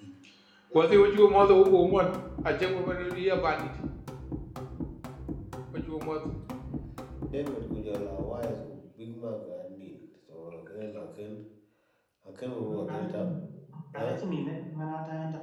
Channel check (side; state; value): both; identical; correlation 1.00